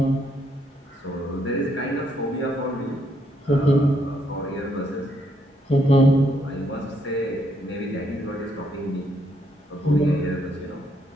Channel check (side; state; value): both; normal; correlation 0.73